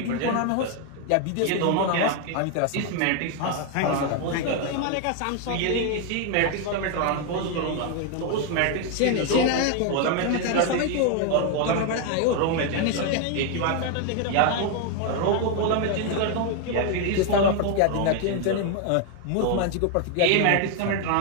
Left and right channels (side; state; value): both; different; correlation 0.01